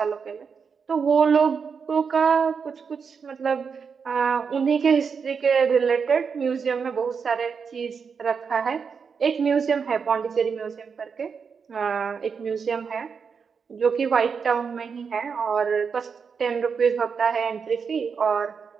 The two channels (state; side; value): quieter; left; 6.0 dB